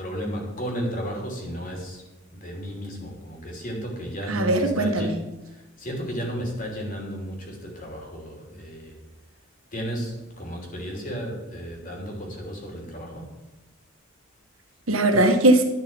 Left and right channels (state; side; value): normal; both; correlation 0.27